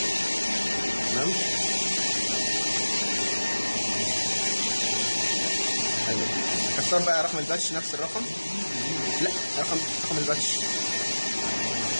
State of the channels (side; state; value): both; inverted; correlation -1.00